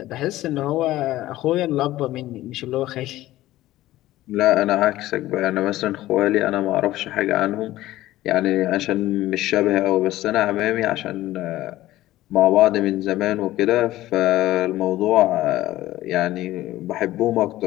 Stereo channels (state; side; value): quieter; right; 15.7 dB